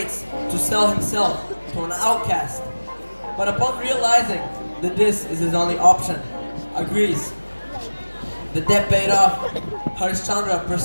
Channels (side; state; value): both; inverted; correlation -1.00